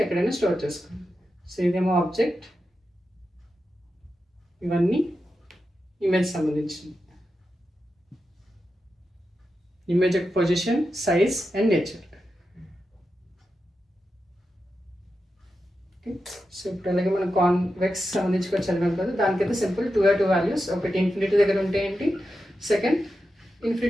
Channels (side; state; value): both; normal; correlation 0.89